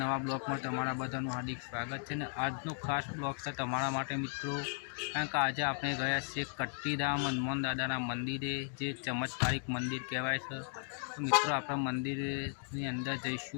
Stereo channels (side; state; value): right; silent; 54 dB below the other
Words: ब्लॉग में तमारा बधाનું हार्दिक स्वागत है। आजनो खास ब्लॉग है तमारा माटे मित्रों, कारण के आज आपणे गया छे कट्टीधाम हनुमान दादाना मंदिरे, जे चमत्कारिक मंदिर कहेवाय छे। तो मित्रों आपणे मंदिरनी अंदर